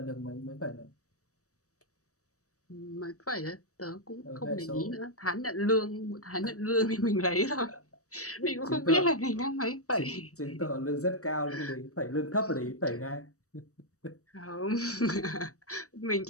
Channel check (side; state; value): right; late; 0.65 ms